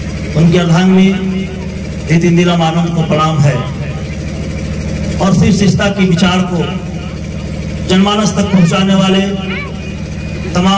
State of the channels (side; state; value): both; identical; correlation 1.00